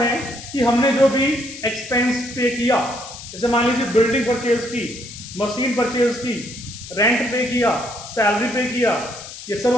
कि हमने जो भी एक्सपेंस पे किया, जैसे मान लीजिए बिल्डिंग परचेज की, मशीन परचेज की रेंट पे किया, सैलरी पे किया, ये सब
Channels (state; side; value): noise; left; hiss, 13 dB below the sound